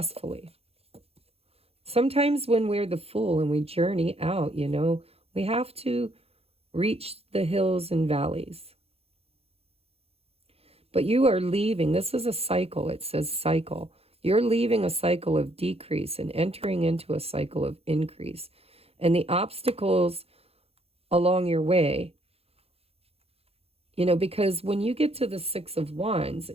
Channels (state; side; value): late; left; 0.29 ms